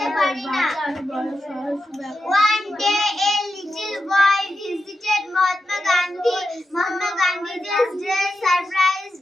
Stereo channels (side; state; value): both; normal; correlation 0.88